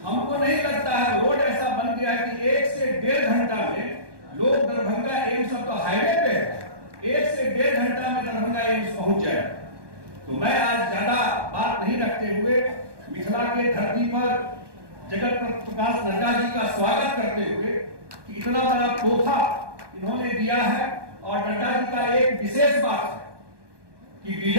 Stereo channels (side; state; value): left; late; 1.2 ms